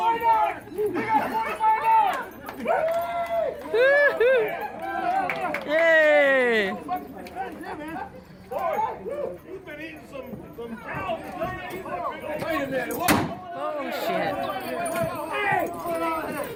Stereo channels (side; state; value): both; identical; correlation 1.00